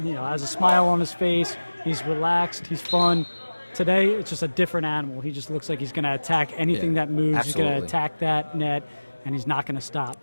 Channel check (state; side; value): inverted; both; correlation -1.00